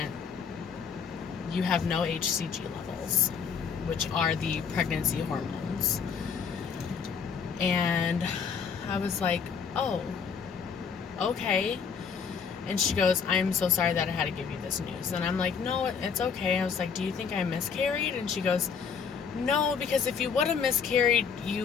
You have no HCG levels, which are the pregnancy hormones. And I was like, oh, okay. And she goes, I'm so sorry that I had to give you this news. And I'm like, no, it's okay. I was like, do you think I miscarried? And she goes, no, because if you would have miscarried,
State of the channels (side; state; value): right; quieter; 6.3 dB